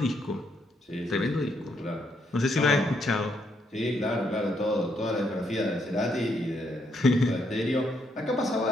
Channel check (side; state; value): both; normal; correlation 0.75